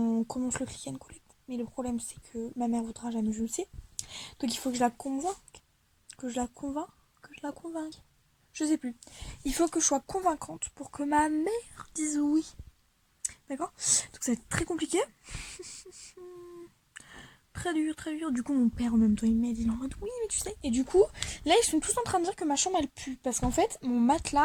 commence le click and collect. Mais le problème c'est que ma mère voudra jamais, je le sais. Donc il faut que je la convainque. Que je la convainque. Que je la convainque. Je sais plus. Il faut que je sois convaincante pour que ma mère dise oui. D'accord? Donc ça va être très compliqué. Très dur, très dur. Du coup, mon père en même temps, il m'aide. Il est en mode oui, mais tu sais. Et du coup, là, ils sont tous en train de dire que ma chambre, elle pue. Parce qu'en fait, mon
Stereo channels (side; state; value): both; identical; correlation 1.00